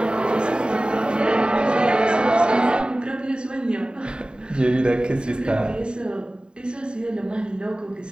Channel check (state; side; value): late; left; 0.050 ms